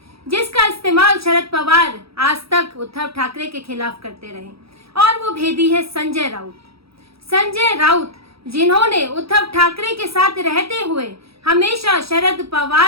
जिसका इस्तेमाल शरद पवार आज तक उद्धव ठाकरे के खिलाफ करते रहे। और वो भेदी है संजय राउत। संजय राउत जिन्होंने उद्धव ठाकरे के साथ रहते हुए हमेशा शरद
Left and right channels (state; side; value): late; left; 0.77 ms